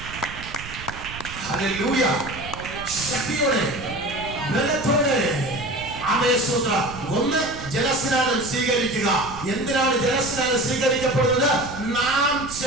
ആമേശ്വര ഒന്ന് ജലസ്നാനം സ്വീകരിക്കുക. എന്തിനാണ് ജലസ്നാനം സ്വീകരിക്കപ്പെടുന്നത്? നാം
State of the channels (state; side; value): noise; right; rumble, 14 dB below the sound